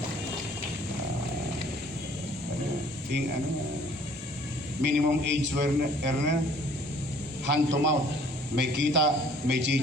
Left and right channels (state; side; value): normal; both; correlation 0.56